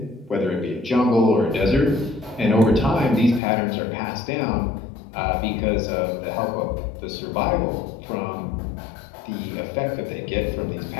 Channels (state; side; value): drops out; right; at 3.4 s